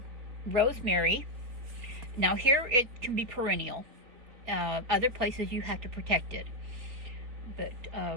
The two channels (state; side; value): late; left; 4.1 ms